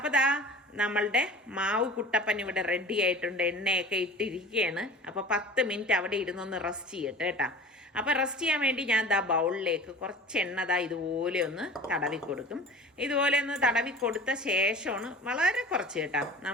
നമ്മളുടെ മാവ് കുട്ടപ്പൻ ഇവിടെ റെഡി ആയിട്ടുണ്ട്. എണ്ണയൊക്കെ ഇട്ടിരിക്കുകയാണ്. അപ്പോൾ 10 മിനിറ്റ് അവിടെ ഇരുന്നൊന്ന് റെസ്റ്റ് ചെയ്യട്ടെ കേട്ടോ. അപ്പോൾ റെസ്റ്റ് ചെയ്യാൻ വേണ്ടി ഞാൻ ബൗളിലേക്ക് കുറച്ച് എണ്ണ ഇതുപോലെ ഒന്ന് തടവി കൊടുക്കും. ഇതുപോലെ ഒന്ന് തടവി കൊടുത്ത ശേഷമാണ്, വളരെ കുറച്ച് കേട്ടോ,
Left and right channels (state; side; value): normal; both; correlation 0.40